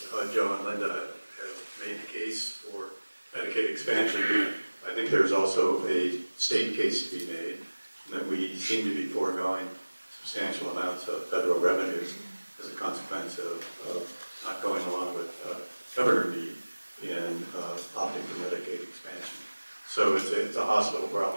Joe and Linda have made the case for Medicaid expansion. I think there's also a state case to be made that we seem to be foregoing substantial amounts of federal revenues as a consequence of not going along with Governor Meade in opting for Medicaid expansion. So it's a hospital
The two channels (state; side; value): inverted; both; correlation -1.00